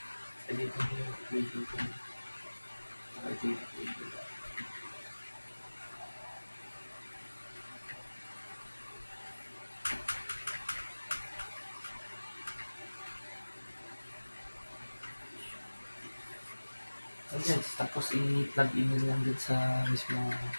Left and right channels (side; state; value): both; inverted; correlation -1.00